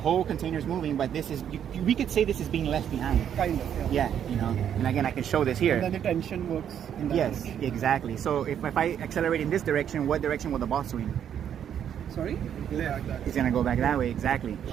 container is moving, but this is, we could say this is being left behind. Kind of, Yeah, you know, and again, I can show this here. And then the tension works in that Yes, direction. exactly. So if I accelerate in this direction, what direction will the ball swing? Sorry? Yeah, like that. It's gonna go back that way, exactly.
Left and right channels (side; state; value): left; quieter; 9.2 dB